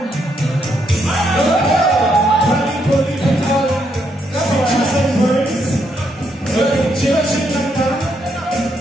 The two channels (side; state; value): both; normal; correlation 0.76